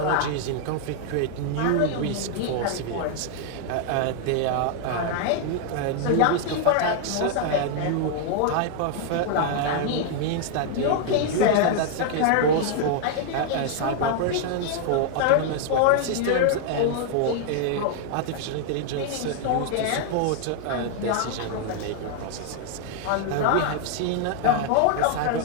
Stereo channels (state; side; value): different; both; correlation 0.00